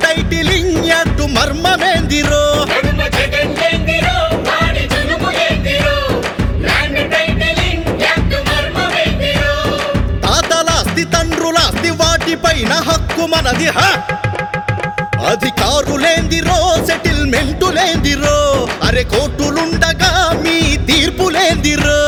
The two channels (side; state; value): both; identical; correlation 1.00